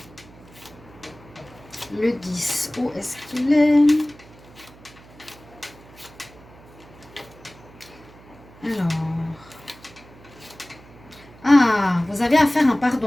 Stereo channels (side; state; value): right; noise; hum, 23 dB below the sound